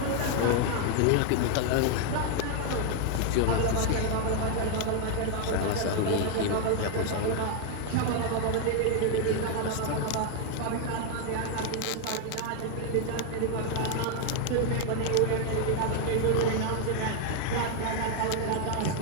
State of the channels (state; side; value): different; both; correlation 0.00